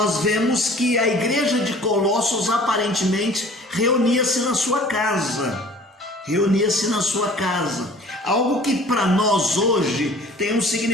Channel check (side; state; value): both; normal; correlation 0.49